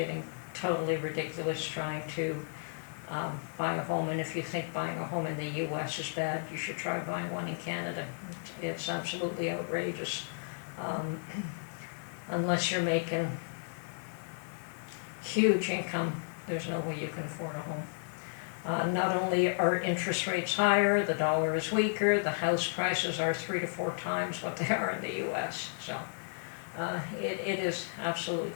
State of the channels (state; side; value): silent; right; digital silence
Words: totally ridiculous trying to buy a home, and if you think buying a home in the US is bad, you should try buying one in Canada. It's absolutely outrageous. Unless you're making huge income, there's no way you can afford a home. Not only are interest rates higher, the dollar is weaker, the house prices are 3 to 4 times what they are in the US. So it is